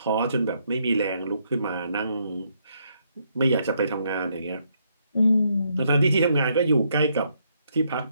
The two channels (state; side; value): inverted; both; correlation -0.74